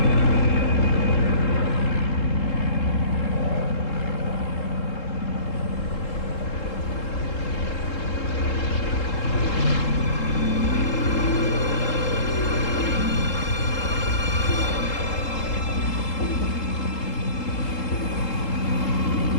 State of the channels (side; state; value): right; late; 3.7 ms